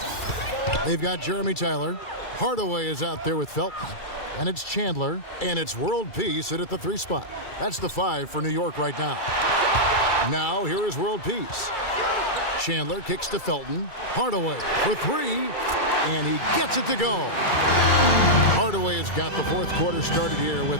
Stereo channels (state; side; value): late; right; 2.3 ms